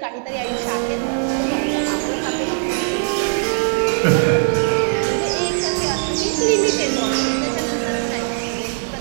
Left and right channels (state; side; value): silent; left; digital silence